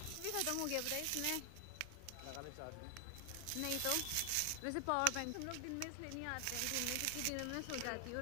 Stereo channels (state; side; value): different; both; correlation 0.00